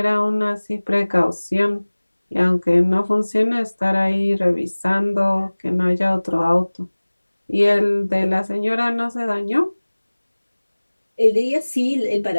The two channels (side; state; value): both; inverted; correlation -1.00